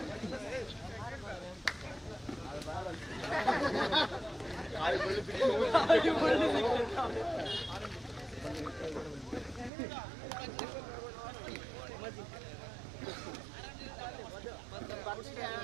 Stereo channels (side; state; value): left; drops out; at 9.7 s